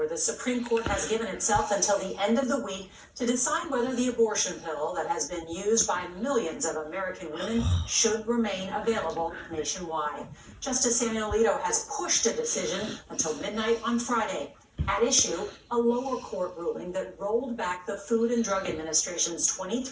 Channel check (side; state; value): both; identical; correlation 1.00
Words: the Supreme Court has given itself until the end of the week to decide whether the abortion pill that has been used by millions of American women should remain available nationwide. Justice Samuel Alito has pushed a decision until midnight on Friday. At issue, a lower court ruling that rolled back the Food and Drug Administration's